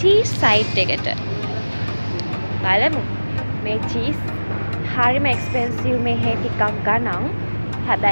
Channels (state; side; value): inverted; both; correlation -1.00